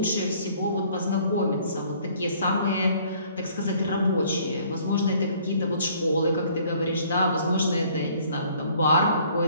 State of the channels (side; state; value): both; inverted; correlation -0.59